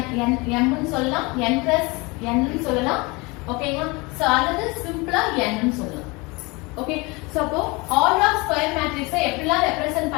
ன்னு சொல்லலாம், n + n ன்னு சொல்லலாம். ஓகேங்களா. சோ அல்லது சிம்பிளா n ன்னு சொல்லலாம். ஓகே. சோ அப்போ ஆர்டர் ஆஃப் ஸ்கொயர் மேட்ரிக்ஸை எப்படிலாம் ரெப்ரசன்ட்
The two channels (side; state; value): right; quieter; 26.0 dB